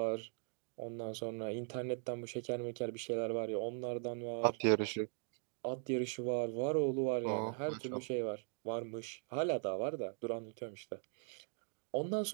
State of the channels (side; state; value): left; silent; 51 dB below the other